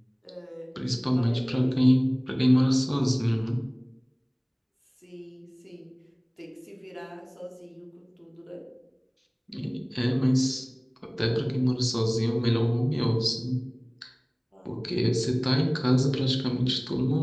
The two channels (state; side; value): identical; both; correlation 1.00